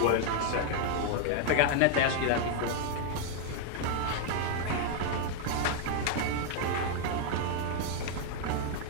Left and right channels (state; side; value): different; both; correlation 0.00